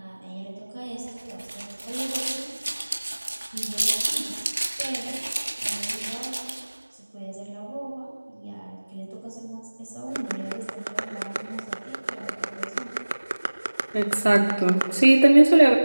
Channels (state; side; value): inverted; both; correlation -1.00